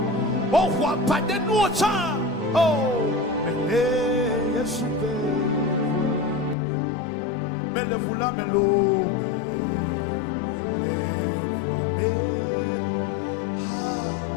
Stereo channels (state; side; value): drops out; right; at 6.6 s